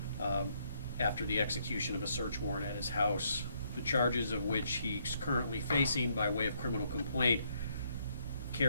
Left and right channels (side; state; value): both; inverted; correlation -0.71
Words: after the execution of a search warrant at his house. The charges of which he's currently facing by way of criminal complaint